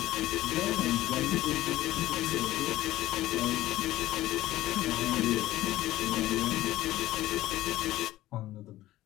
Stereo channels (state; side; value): quieter; right; 15.8 dB